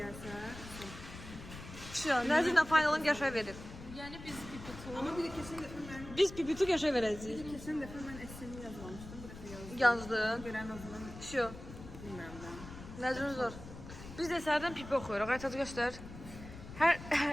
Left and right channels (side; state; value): left; noise; rumble, 13 dB below the sound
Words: Şu, Nəzirlə finalın qəşəng verir. Yəni biz pipitu Ama bir de kesin defa ben Biz pipitu qəşəng verəcəyik. kesin defa ben esemi yazmamıştım. Bu defa yazdım. Yazdın. Gören o zaman Şu, bilmiyorum ben. Nəzrin zor. Biz də sərdən pipi oxuyuruq. Aytad göstər.